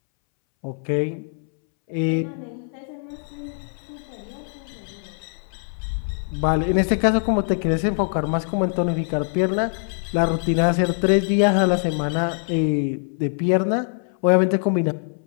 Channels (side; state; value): right; silent; 63 dB below the other